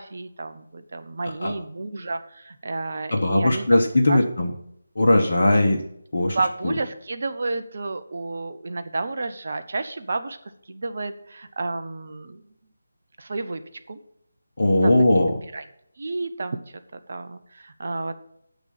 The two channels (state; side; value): inverted; both; correlation -0.93